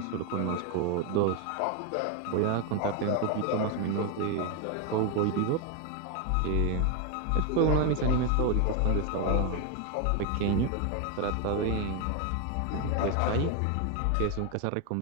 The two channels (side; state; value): both; different; correlation 0.01